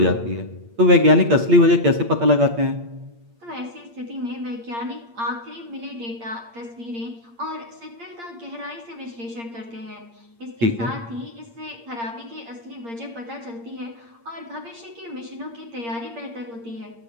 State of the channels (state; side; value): late; left; 8.6 ms